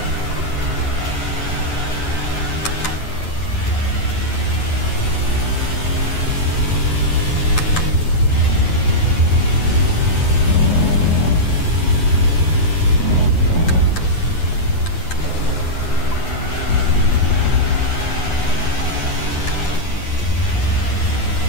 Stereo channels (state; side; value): late; right; 8.8 ms